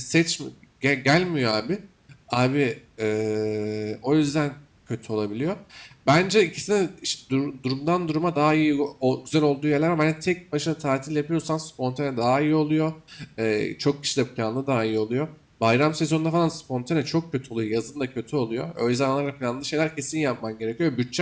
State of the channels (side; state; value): both; identical; correlation 1.00